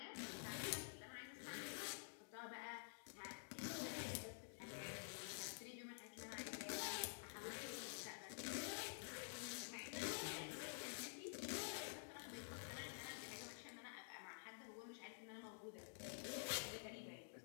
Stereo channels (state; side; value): silent; right; digital silence